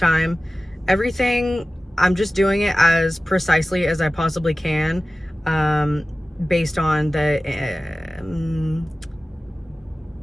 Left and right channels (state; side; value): normal; both; correlation 0.96